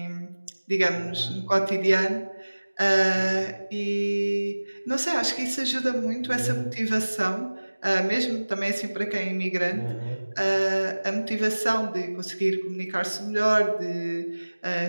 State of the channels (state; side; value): inverted; both; correlation -1.00